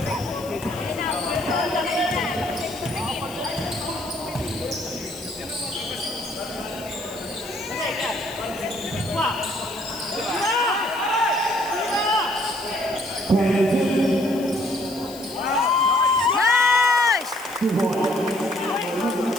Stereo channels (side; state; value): left; noise; hiss, 17 dB below the sound